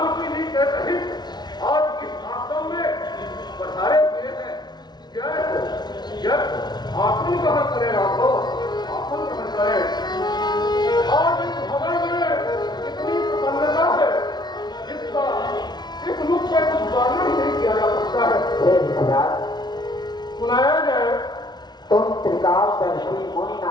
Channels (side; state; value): right; late; 0.20 ms